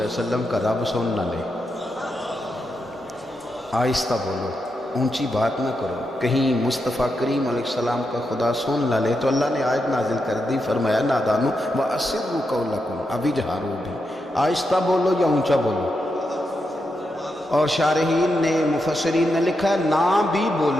وسلم کا رب سن نہ لے، آہستہ بولو، اونچی بات نہ کرو، کہیں مصطفیٰ کریم علیہ السلام کا خدا سن نہ لے۔ تو اللہ نے آیت نازل کر دی، فرمایا نادانو وَأَسِرُّوا قَوْلَكُمْ، ابھی جہارو بھی، آہستہ بولو یا اونچا بولو۔ اور شارحین نے مفسرین نے لکھا نہ بھی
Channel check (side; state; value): both; normal; correlation 0.85